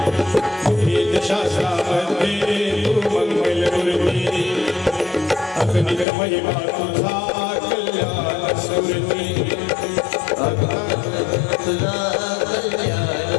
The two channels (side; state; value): right; drops out; at 6.1 s